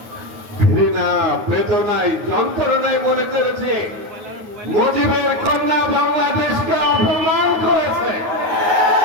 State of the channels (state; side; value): late; left; 9.3 ms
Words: ঘৃণা, বেদনায়, যন্ত্রণায় মনে করেছে মুজিবের কন্যা বাংলাদেশকে অপমান করেছে।